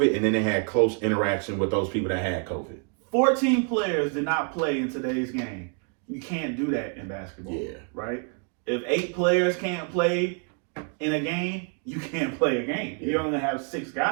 and then they had close interaction with those people that had COVID. 14 players did not play in today's game. You can't do that in basketball, right? If 8 players can't play in a game, you can't play a game. You only have 6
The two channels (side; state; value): left; quieter; 39.3 dB